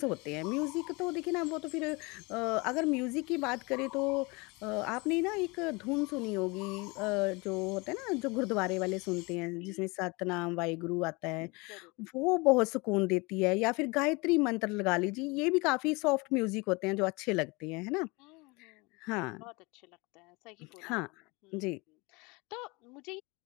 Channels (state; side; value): quieter; right; 26.5 dB